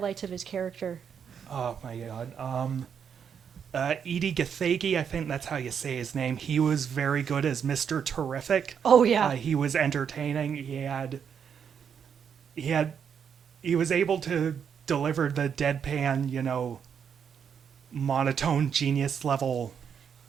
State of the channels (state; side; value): quieter; left; 7.5 dB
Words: of his character. Oh my god. Edie Gathegi, I think that's how you say his name. He was very good as Mr. Terrific. Oh yeah. He was entertaining. He was able to deliver the deadpan, you know, monotone genius level